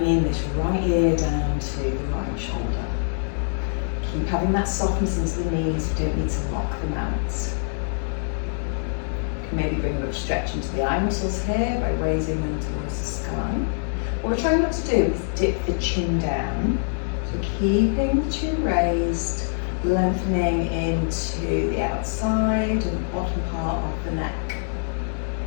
this right ear down to the right shoulder. Keep having that softness into the knees, you don't need to lock them out. You can maybe bring a bit of stretch into the eye muscles here by raising them towards the sky. What we're trying not to do is dip the chin down. So keeping the chin raised, lengthening into the outside and bottom part of the neck.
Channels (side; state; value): right; silent; digital silence